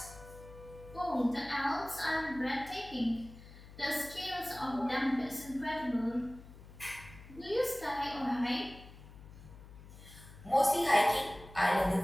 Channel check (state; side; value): noise; left; hum, 18 dB below the sound